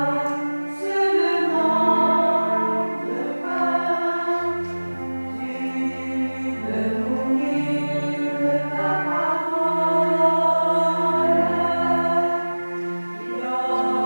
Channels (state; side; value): inverted; both; correlation -1.00